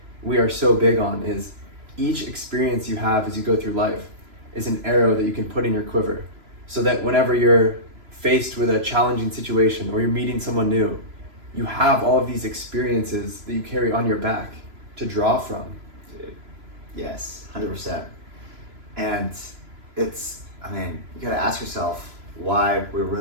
we are so big on is each experience you have as you go through life is an arrow that you can put in your quiver so that whenever you're faced with a challenging situation or you're meeting someone new, you have all of these experiences that you carry on your back to draw from. Dude. Yes, 100%. And it's, I mean, you gotta ask yourself why we're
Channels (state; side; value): late; left; 3.0 ms